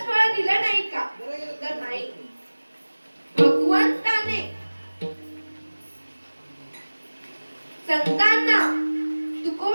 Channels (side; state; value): both; inverted; correlation -1.00